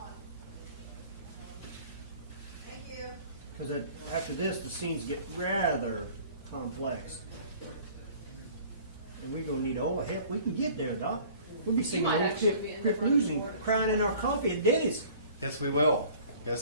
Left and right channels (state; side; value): inverted; both; correlation -0.49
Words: Thank you. Because after this, the scenes get rather complex. And we're going to need all the help we can get there, Doc. We'll be singing might old actually be in the Crip front Blues and board. crying in our coffee at Denny's. Yes, we will.